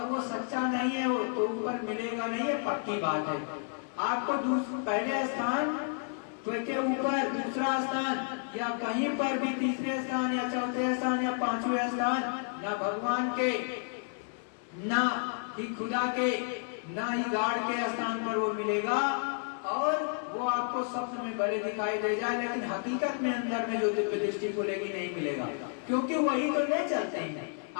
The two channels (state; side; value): silent; right; 57 dB below the other